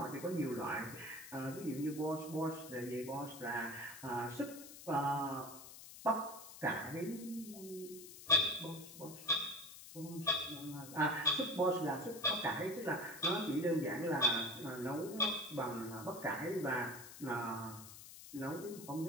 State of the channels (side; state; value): left; noise; hiss, 14 dB below the sound